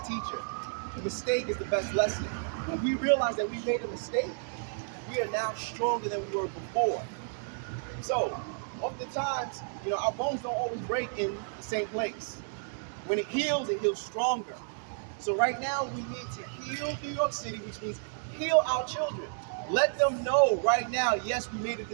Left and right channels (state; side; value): silent; left; digital silence